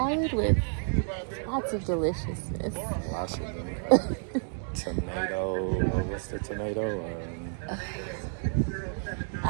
with lots of deliciousness. Lots of them. Tomato, what's the tomato?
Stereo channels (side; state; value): left; silent; digital silence